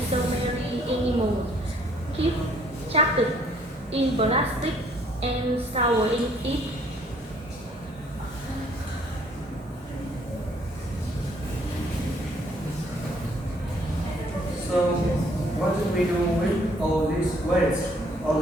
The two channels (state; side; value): normal; both; correlation 0.63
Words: so many animals keep trapped in plastic and swallowing it. So, what did we do with all this waste?